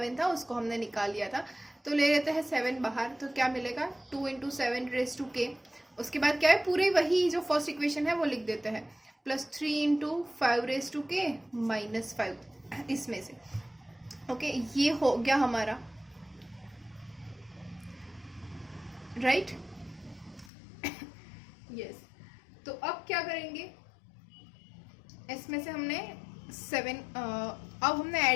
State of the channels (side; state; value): right; drops out; at 20.5 s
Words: था उसको हमने निकाल लिया था, तो ले लेते हैं 7 बाहर, तो क्या मिलेगा 2 इंटू 7 रेज टू के. उसके बाद क्या है, पूरे वही जो फर्स्ट इक्वेशन है वो लिख देते हैं, प्लस 3 इंटू 5 रेज टू के माइनस 5 इसमें से. ओके, ये हो गया हमारा, राइट. यस, तो अब क्या करेंगे, इसमें से हमने 7 अब हमने